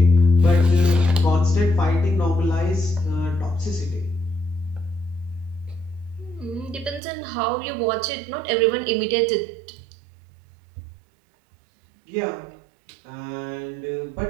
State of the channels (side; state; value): left; drops out; at 7.0 s